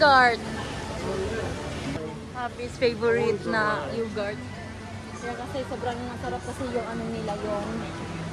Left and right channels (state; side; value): identical; both; correlation 1.00